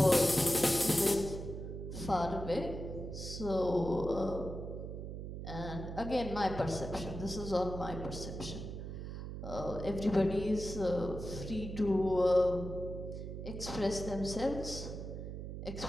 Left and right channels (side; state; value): right; noise; hum, 7 dB below the sound